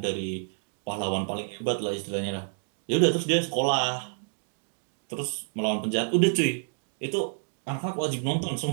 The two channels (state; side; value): silent; left; digital silence